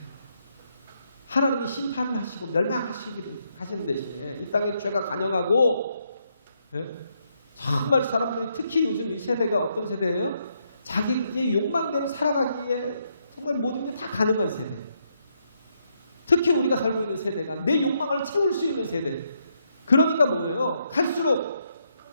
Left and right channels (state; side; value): inverted; both; correlation -0.77